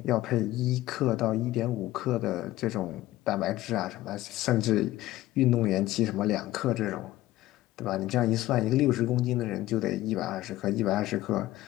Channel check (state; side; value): quieter; right; 16.0 dB